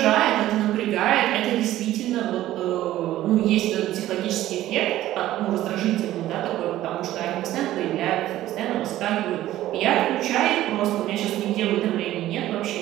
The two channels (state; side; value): quieter; left; 14.3 dB